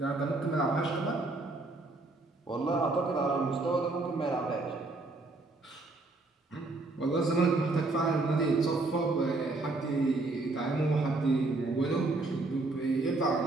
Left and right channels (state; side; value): quieter; left; 3.2 dB